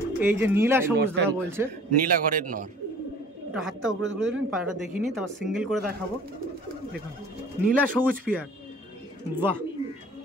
এই যে নীলা সবুজ দাদা বলছে, নীলা ঘরের নর। এটা হাতটা উপরে তুলে দিন, পায়রাটা দেখিনি, তারপর সিঙ্গেল করে দেখাবো। দেখুন নীলা সবুজ পিয়ার। বাহ,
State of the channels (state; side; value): normal; both; correlation 0.49